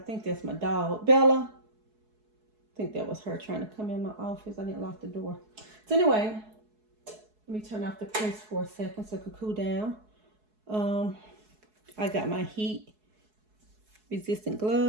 that's my dog. Bella. I think that was her trying to come in my office. I didn't lock the door. So anyway, let me turn off the press for a second so it can cool down. I got my heat resistant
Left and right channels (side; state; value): left; late; 4.7 ms